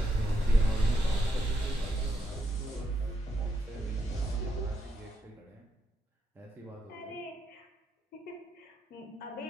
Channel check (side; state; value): both; normal; correlation 0.80